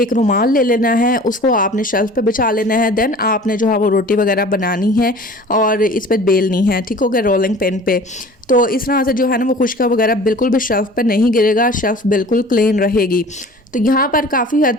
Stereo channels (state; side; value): normal; both; correlation 0.44